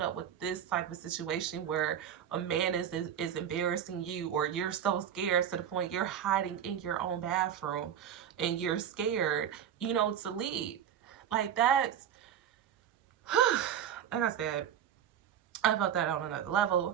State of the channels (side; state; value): left; quieter; 9.4 dB